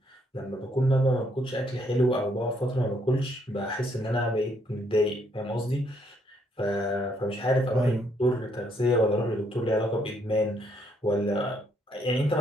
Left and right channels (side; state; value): both; normal; correlation 0.71